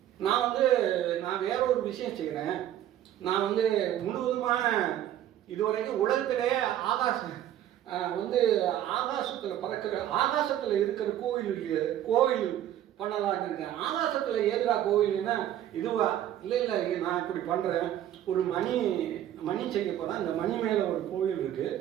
நான் வேற ஒரு விஷயம் செய்கிறேன். நான் வந்து முழுவதுமான இதுவரைக்கும் உலகத்திலே ஆகாசத்தில் பறக்கிற, ஆகாசத்தில் இருக்கிற கோவில் பண்ணலான்னு இருக்கேன். ஆகாசத்தில் ஏதுரா கோவில்னா இதுவா? இல்லை நான் இப்படி பண்ணுறேன். ஒரு மணி செய்ய போகிறேன். அந்த மணி மேலே ஒரு கோவில் இருக்குது.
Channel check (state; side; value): quieter; left; 11.7 dB